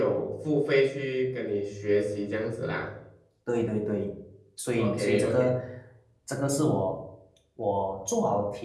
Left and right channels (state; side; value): identical; both; correlation 1.00